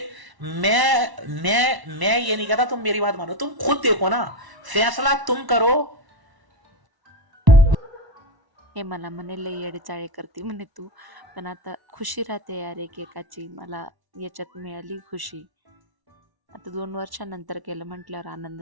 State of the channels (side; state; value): left; late; 1.0 ms